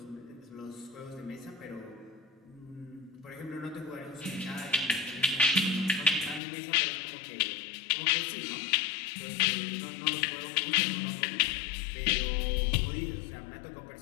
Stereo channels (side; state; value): right; drops out; at 6.4 s